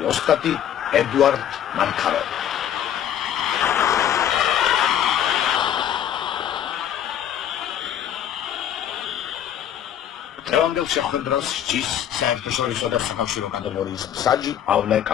ოსტატი ედუარდ მანქაროვი. დღევანდელ შეხვედრას სჯის საერთაშორისო და საკავშირო კატეგორიის მსაჯი პავლე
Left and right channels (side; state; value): right; quieter; 10.1 dB